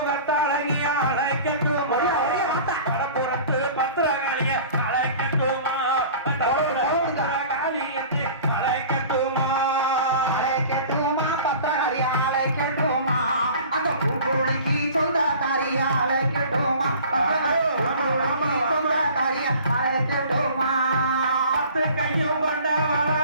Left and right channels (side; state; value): both; inverted; correlation -0.44